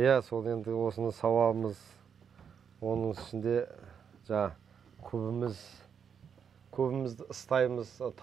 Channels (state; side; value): quieter; left; 7.3 dB